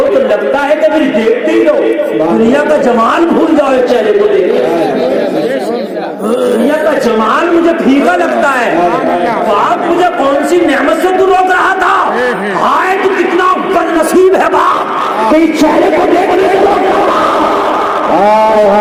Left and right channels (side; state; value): both; identical; correlation 1.00